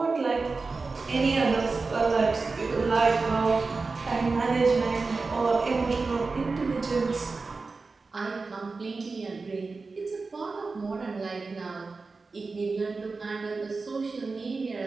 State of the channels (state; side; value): quieter; left; 4.1 dB